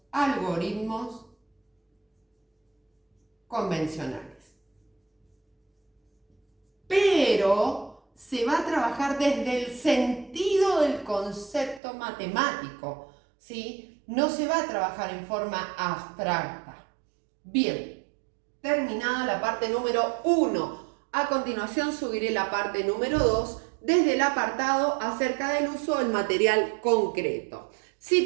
algoritmos convencionales. Pero se va a trabajar desde el sentido del concepto matemático, ¿sí? No se va a trabajar en forma abstracta. Bien, terminada la parte número 1. A continuación subiré la parte número 2 desde el apartado acerca del uso del material concreto. Si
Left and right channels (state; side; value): drops out; left; at 11.8 s